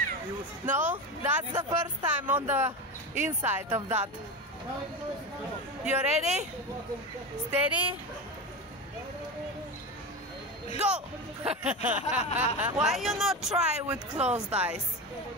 No? That's the first time on the inside of that. You ready? Steady? Go! Why you not try with closed eyes?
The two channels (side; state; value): both; normal; correlation 0.22